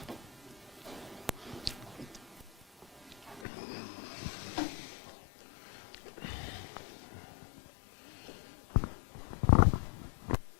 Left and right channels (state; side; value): drops out; right; at 3.5 s